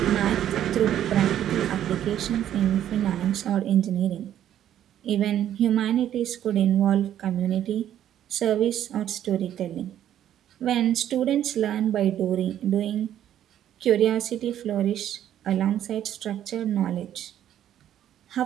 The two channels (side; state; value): left; quieter; 11.0 dB